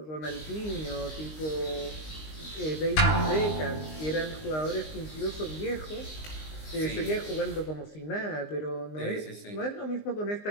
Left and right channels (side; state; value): right; late; 19 ms